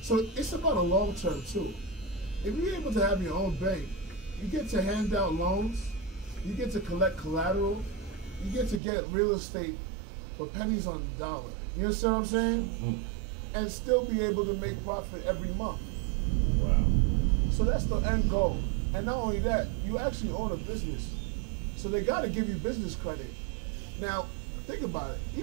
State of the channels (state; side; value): drops out; left; at 8.8 s